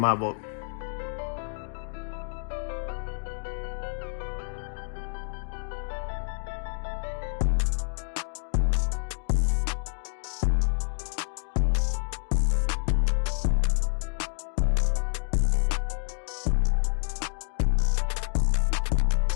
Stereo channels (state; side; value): silent; right; digital silence